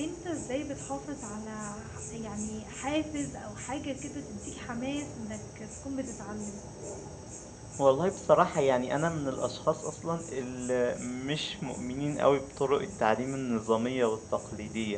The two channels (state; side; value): identical; both; correlation 1.00